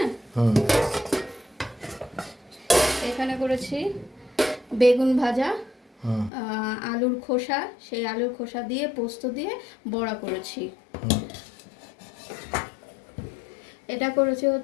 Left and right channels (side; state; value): right; drops out; at 6.3 s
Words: এখানে করেছি বেগুন ভাজা, আলুর খোসা, সেই আলুর খোসা দিয়ে পোস্ত দিয়ে বড়া করেছি। এটা করেছি